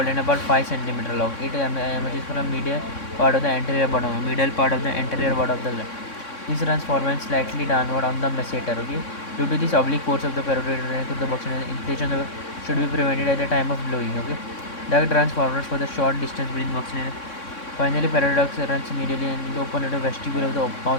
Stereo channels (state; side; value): late; right; 3.6 ms